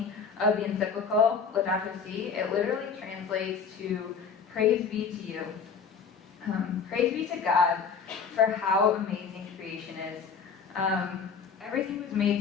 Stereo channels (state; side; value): quieter; right; 5.9 dB